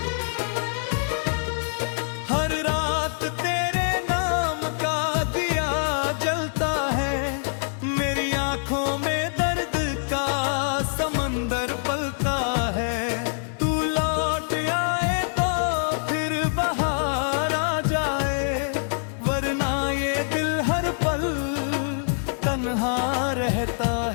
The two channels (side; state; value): right; silent; digital silence